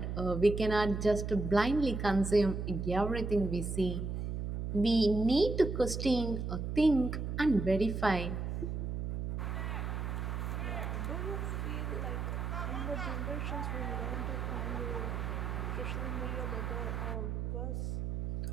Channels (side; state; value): right; noise; hum, 3 dB below the sound